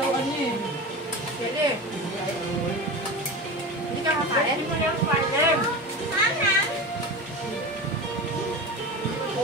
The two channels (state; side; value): normal; both; correlation 0.28